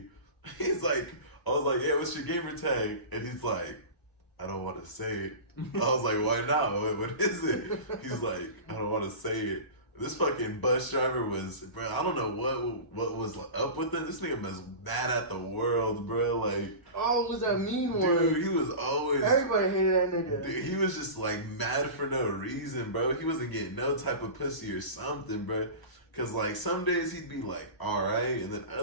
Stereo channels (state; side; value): late; right; 1.0 ms